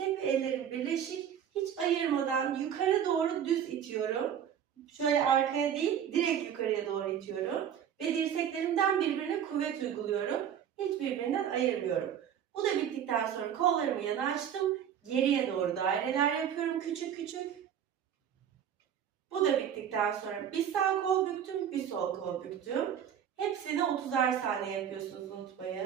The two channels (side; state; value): left; quieter; 9.1 dB